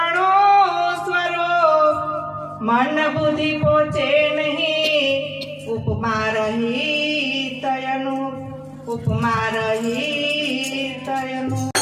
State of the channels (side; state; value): both; identical; correlation 1.00